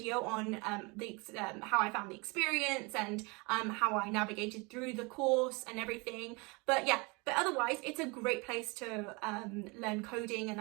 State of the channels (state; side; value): quieter; left; 28.1 dB